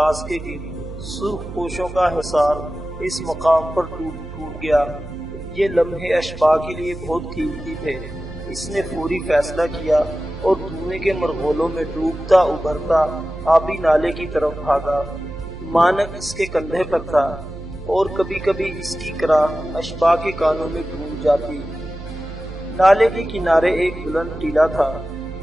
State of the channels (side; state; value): right; noise; hum, 12 dB below the sound